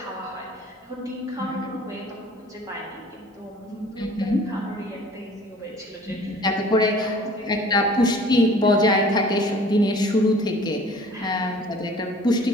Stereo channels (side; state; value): both; normal; correlation 0.49